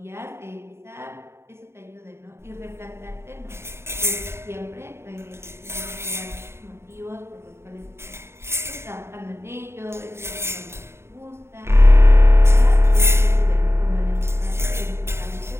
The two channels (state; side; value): late; left; 0.12 ms